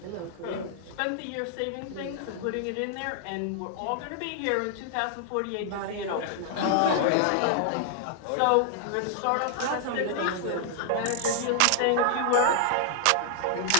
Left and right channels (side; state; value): both; different; correlation -0.01